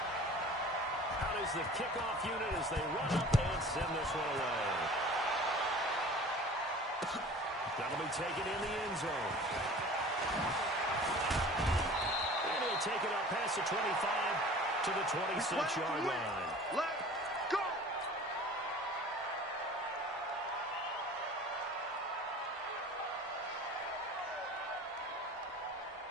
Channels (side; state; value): both; normal; correlation 0.43